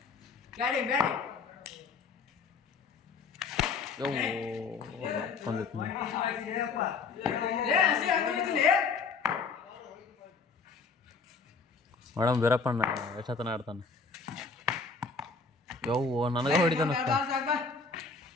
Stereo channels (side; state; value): right; quieter; 4.7 dB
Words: ಮೇಡಮ್ ವೀರಪ್ಪಣ್ಣ ಎಷ್ಟತನ ಆಡ್ತಾನೆ ಯವ್ವ ನನಗೆ ಹೊಡಿತಾನ